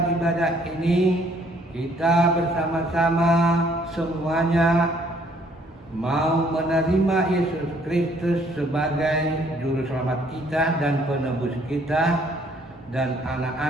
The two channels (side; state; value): both; normal; correlation 0.63